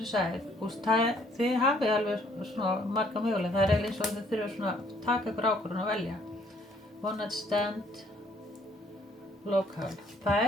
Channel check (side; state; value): both; normal; correlation 0.63